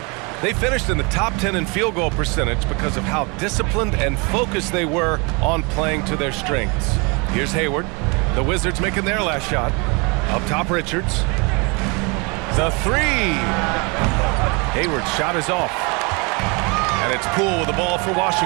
They finished in the top 10 in field goal percentage because of how disciplined and focused they were on playing to their strengths. Here's Hayward. The Wizards making their last shot. Up top, Richards. The three. Hayward's shot is off. And it's Poole with the ball for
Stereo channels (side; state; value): left; quieter; 30.2 dB